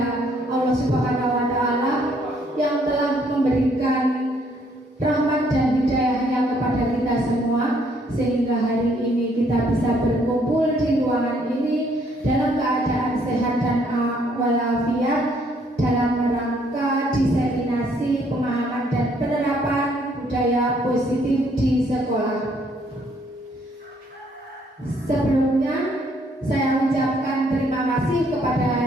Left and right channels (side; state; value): both; normal; correlation 0.66